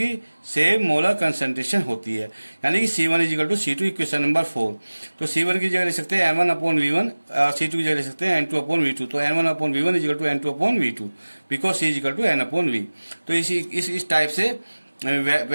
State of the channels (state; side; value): inverted; both; correlation -1.00